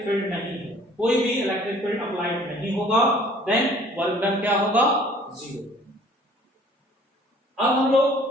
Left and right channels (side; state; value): both; normal; correlation 0.54